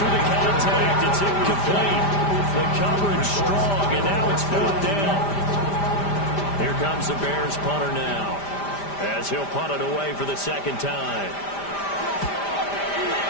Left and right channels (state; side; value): late; right; 5.0 ms